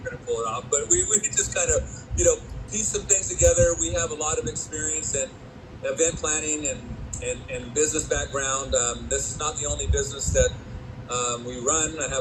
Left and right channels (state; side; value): identical; both; correlation 1.00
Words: to pull it off. But we just kind of, piece some things together. We have a lot of experience in event planning and business background. This is not the only business that we run. I